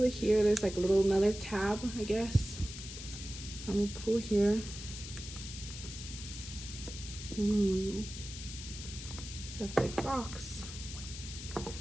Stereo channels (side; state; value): left; noise; hiss, 10 dB below the sound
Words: it here. There's like a little another tab, I guess. So I'm gonna pull here. Ooh, it's a big box.